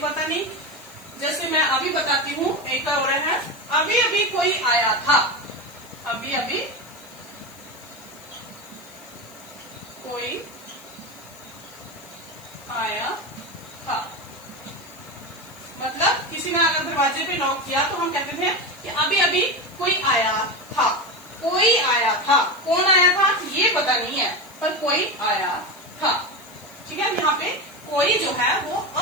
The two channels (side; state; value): left; noise; hiss, 22 dB below the sound